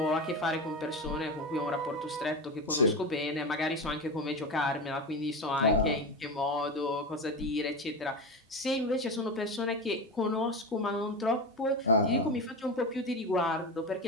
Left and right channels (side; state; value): both; normal; correlation 0.21